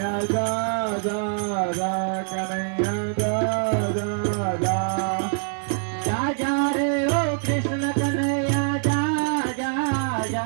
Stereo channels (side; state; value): left; silent; digital silence